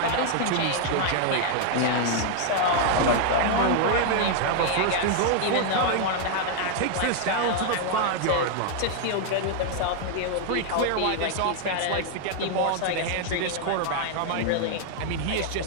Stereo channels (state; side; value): different; both; correlation 0.00